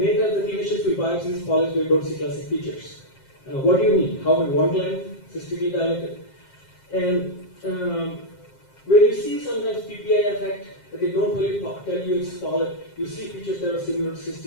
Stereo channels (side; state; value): right; late; 7.5 ms